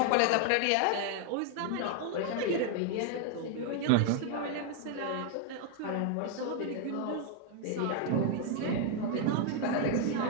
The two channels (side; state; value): both; different; correlation 0.00